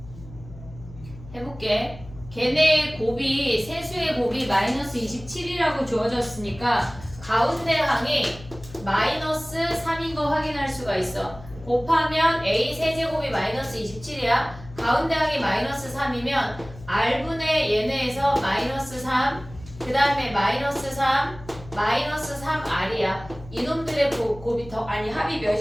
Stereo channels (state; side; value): noise; left; hum, 17 dB below the sound